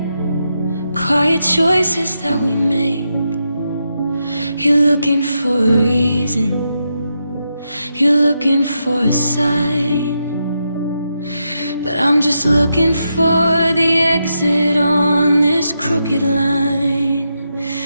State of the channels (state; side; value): inverted; both; correlation -0.84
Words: quiet choices that we make. You're looking for a reason, you're looking for a sign, but I'm just looking for the exit on this crooked line.